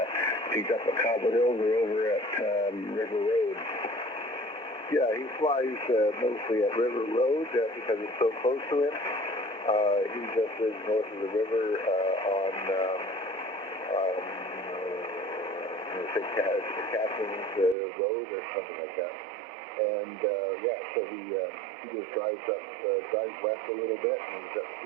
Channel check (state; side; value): drops out; left; at 17.8 s